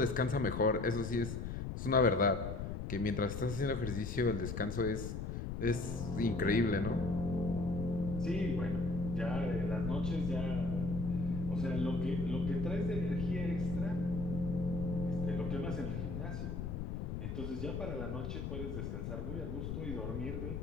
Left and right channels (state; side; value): noise; left; rumble, 4 dB below the sound